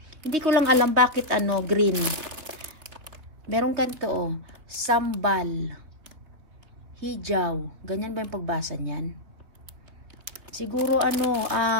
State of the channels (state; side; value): late; left; 3.6 ms